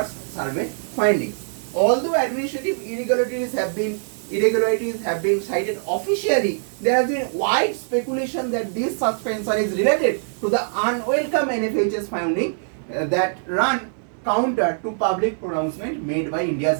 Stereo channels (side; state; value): left; silent; digital silence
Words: survey findings. Although administrative irregularities have been cited officially, there has been wide speculation that this suspension is related to the unwelcome NFHS finding that run counter to public pronouncement made by